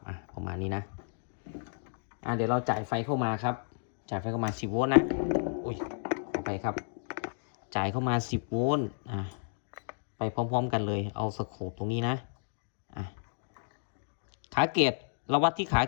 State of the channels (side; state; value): right; silent; digital silence